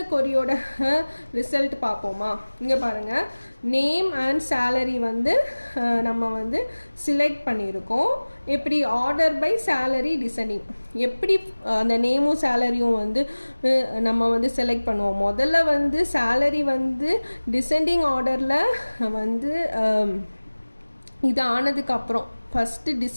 கொரியோட ரிசல்ட் பார்ப்போமா? இங்கே பாருங்கள், நேம் அண்ட் சேலரி வந்து நம்ம வந்து சிலெக்ட் பண்ணியிருக்கோம். எப்படி? Order by salary descending. எப்படி அந்த நேமும் சேலரியும் வந்து நம்ம வந்து செலக்ட் பண்ணுவோம்? முதல்ல வந்து சேலரி வந்து டிசெண்டிங் ஆர்டரில் வந்து இது ஆனதுக்கப்புறம் ஃபஸ்ட்டு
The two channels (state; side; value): inverted; both; correlation -1.00